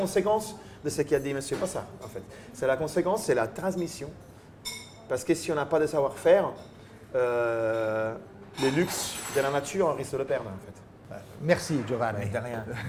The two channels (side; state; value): both; identical; correlation 1.00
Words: de ce qu'a dit Monsieur Passard. En fait. C'est la conséquence, c'est la transmission. Parce que si on n'a pas de savoir-faire, les luxes de la nature, on risque de le perdre en fait. Merci Giovanni. De rien,